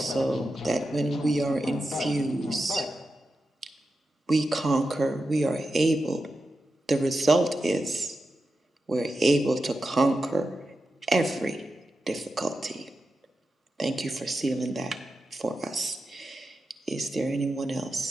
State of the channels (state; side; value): normal; both; correlation 0.90